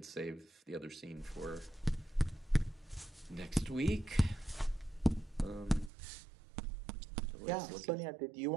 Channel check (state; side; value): drops out; left; at 5.9 s